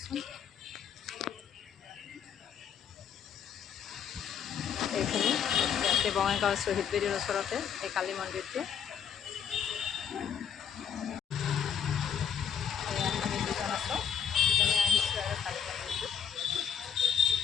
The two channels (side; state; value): right; quieter; 7.9 dB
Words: এইখিনি ইয়াতে বঙাইগাঁও শ্বহীদ বেদীৰ ওচৰতে এই কালী মন্দিৰটো। আমি দুজন আছোঁ, দুজনে আহিছোঁ আৰু কালী মন্দিৰটো।